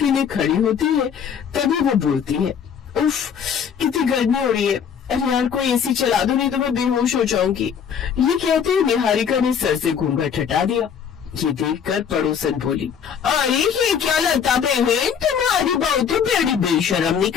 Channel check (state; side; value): quieter; right; 7.6 dB